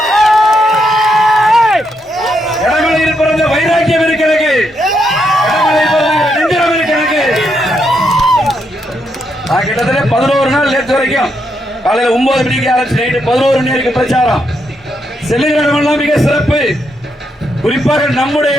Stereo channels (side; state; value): both; normal; correlation 0.79